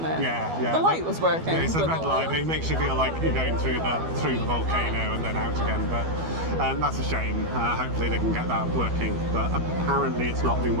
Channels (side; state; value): left; late; 12 ms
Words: it? Yeah. The light was working. Yeah, it's a red light. It makes you feel like you're going through the volcano and then out again. But that's a shame. Hopefully they can get that working. But apparently it's not been